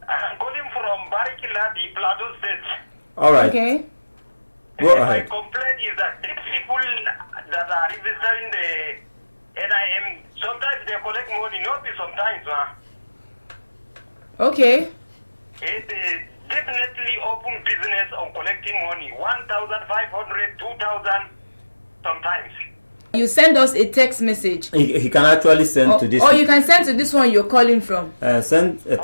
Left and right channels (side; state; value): both; inverted; correlation -1.00